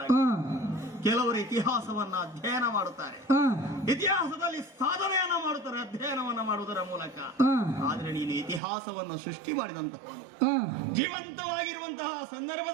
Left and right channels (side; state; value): left; drops out; at 8.6 s